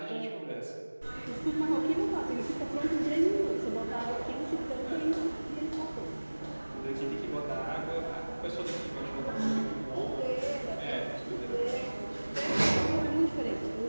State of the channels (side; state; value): both; inverted; correlation -1.00